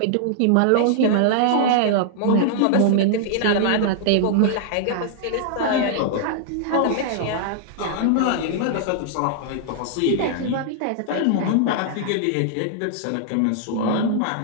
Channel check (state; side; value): different; both; correlation -0.01